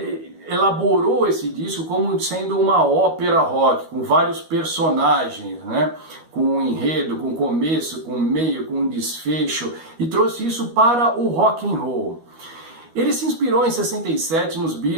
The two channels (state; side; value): late; left; 12 ms